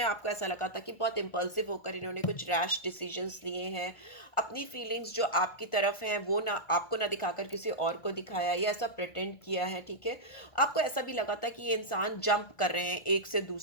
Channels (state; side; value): late; right; 1.5 ms